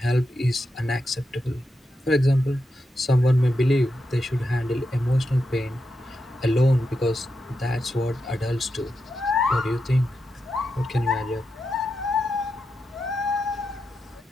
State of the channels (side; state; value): both; normal; correlation 0.87